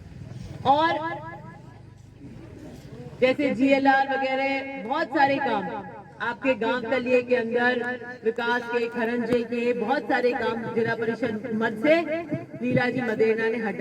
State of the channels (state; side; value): identical; both; correlation 1.00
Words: और जैसे जीएलआर वगैरह बहुत सारे काम आपके गांव तलिए के अंदर विकास के, खरंजे के बहुत सारे काम जिला परिषद मद से लीला जी मदेना ने